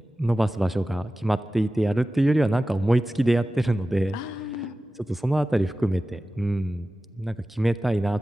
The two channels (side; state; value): both; normal; correlation 0.95